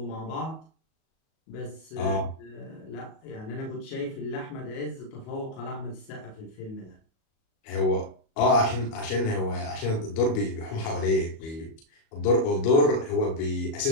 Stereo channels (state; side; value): late; right; 37 ms